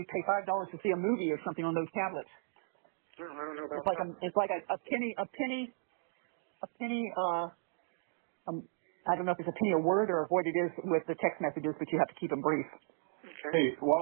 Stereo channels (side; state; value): left; silent; digital silence